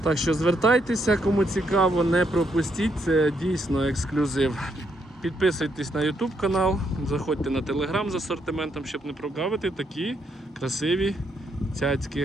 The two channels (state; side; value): normal; both; correlation 0.76